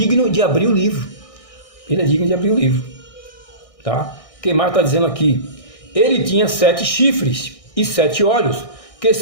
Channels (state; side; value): late; right; 1.6 ms